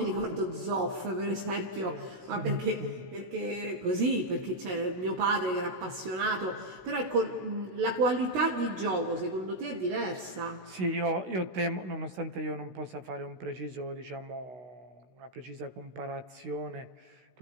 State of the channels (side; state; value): left; late; 16 ms